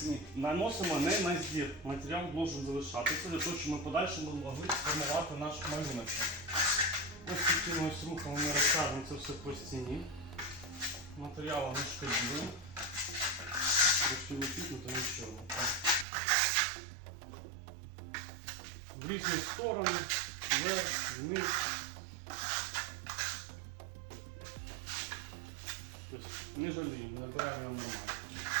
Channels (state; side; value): drops out; left; at 16.1 s